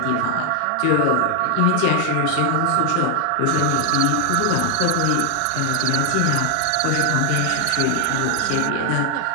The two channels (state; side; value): different; both; correlation 0.00